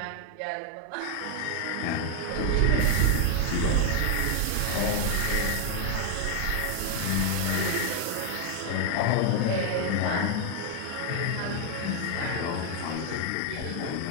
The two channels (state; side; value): different; both; correlation 0.00